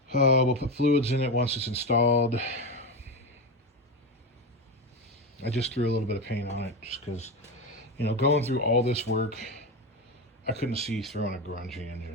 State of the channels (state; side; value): normal; both; correlation 0.17